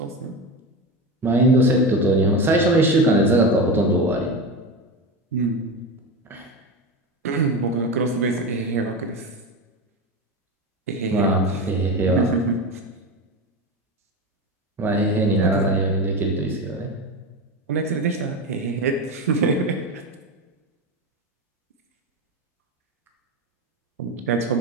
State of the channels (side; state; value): both; normal; correlation 0.22